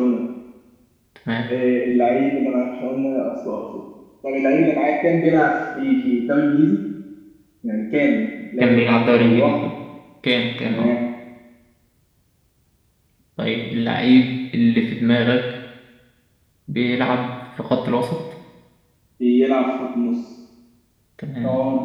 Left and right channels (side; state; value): both; identical; correlation 1.00